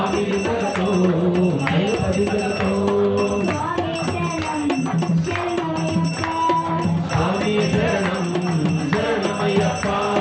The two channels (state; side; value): identical; both; correlation 1.00